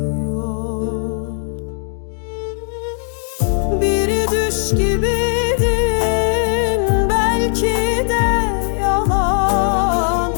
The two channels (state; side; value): silent; right; digital silence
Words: Bir düş gibiydin, belki de yalan,